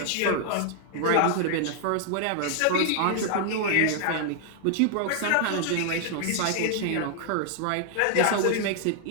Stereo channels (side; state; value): both; different; correlation 0.00